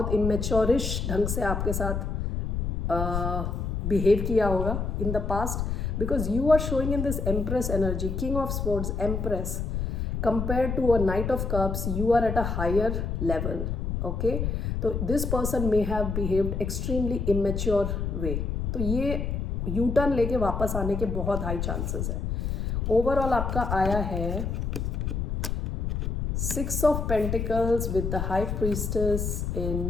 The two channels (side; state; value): left; noise; rumble, 1 dB below the sound